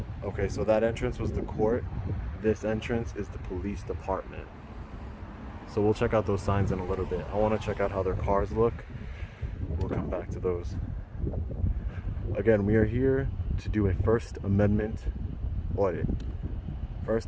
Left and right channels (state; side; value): identical; both; correlation 1.00